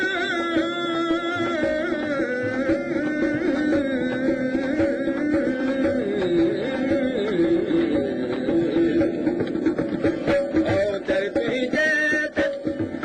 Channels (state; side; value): identical; both; correlation 1.00